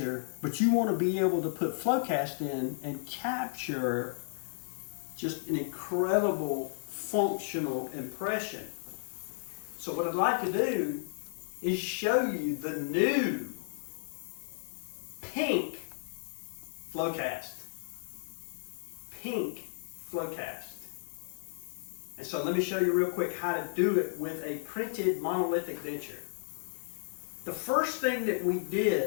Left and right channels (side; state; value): right; silent; digital silence